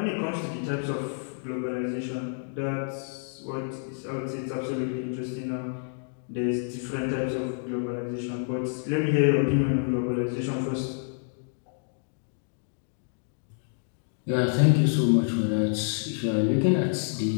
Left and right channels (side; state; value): right; silent; digital silence